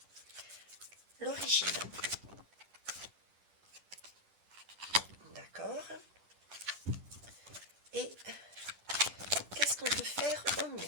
L'origine. D'accord. Et qu'est-ce qu'on peut faire au mieux,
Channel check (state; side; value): late; left; 10 ms